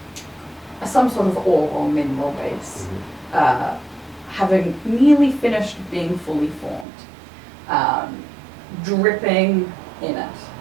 some sort of ore or mineral base, having nearly finished being fully formed, dripping in it.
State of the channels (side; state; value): left; drops out; at 6.9 s